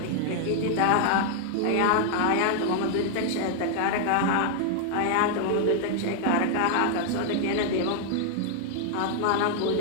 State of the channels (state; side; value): different; both; correlation 0.00